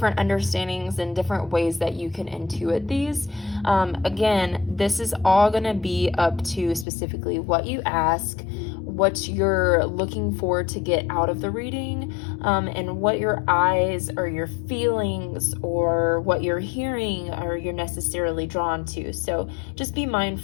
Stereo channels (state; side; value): drops out; right; at 6.9 s